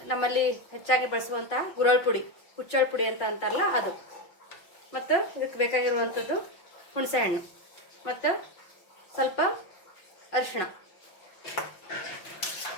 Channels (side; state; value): right; late; 5.5 ms